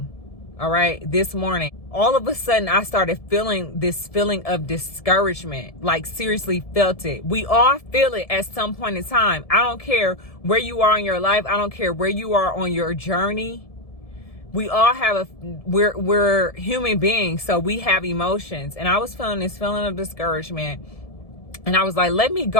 all right? This morning, all of a sudden, I started feeling this feeling of discouragement, like seriously felt it. We all feel it at some point in time. I don't care where you are in your life. I don't care where you are on your journey. We all have we're human beings, so we have emotions. And I was feeling this feeling of discouragement. And I was like, let me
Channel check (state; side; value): late; right; 1.7 ms